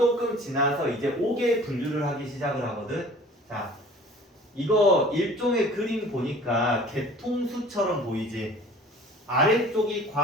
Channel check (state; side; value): normal; both; correlation 0.47